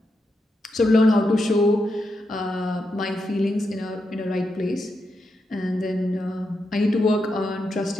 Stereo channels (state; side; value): normal; both; correlation 0.85